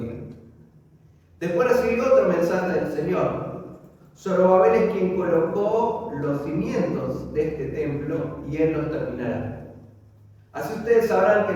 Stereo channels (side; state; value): both; identical; correlation 1.00